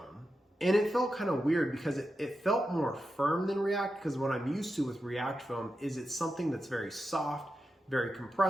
And it felt kind of weird because it felt more firm than React, because what I'm used to with React foam is it's something that's very soft, very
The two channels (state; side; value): normal; both; correlation 0.89